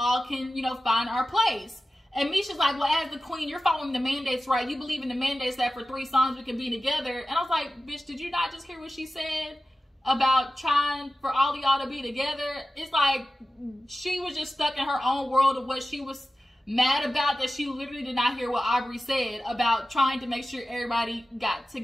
can, find our place. And Misha's like, well, as the queen, you're following the mandates, right? You believe in the mandates that for 3 songs we can be together. And I was like, bitch, did you not just hear what she said? about trying for all of y'all to be together. It's like she was just stuck in her own world of what she was mad about, that she literally did not hear what Aubrey said about trying to make sure everybody got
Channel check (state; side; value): normal; both; correlation 0.94